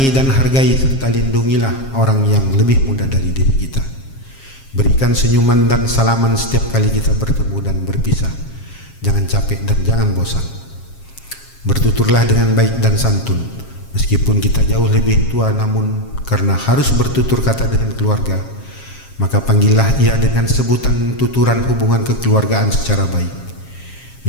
dan hargai serta lindungilah orang yang lebih muda dari diri kita. Berikan senyuman dan salaman setiap kali kita bertemu dan berpisah. Jangan capek dan jangan bosan. Bertuturlah dengan baik dan santun, meskipun kita jauh lebih tua, namun karena harus bertutur kata dengan keluarga, maka panggillah ia dengan sebutan tuturan hubungan kekeluargaan secara baik.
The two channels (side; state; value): right; late; 7.4 ms